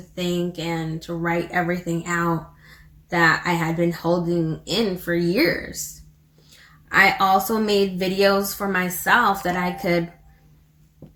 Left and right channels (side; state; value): both; identical; correlation 1.00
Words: think and to write everything out that I had been holding in for years. I also made videos for myself that I could